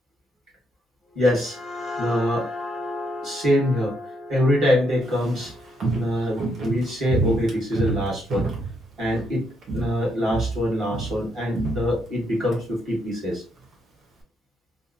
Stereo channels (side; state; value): both; normal; correlation 0.76